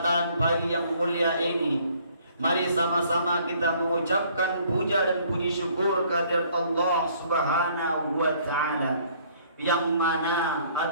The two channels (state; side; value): inverted; both; correlation -0.60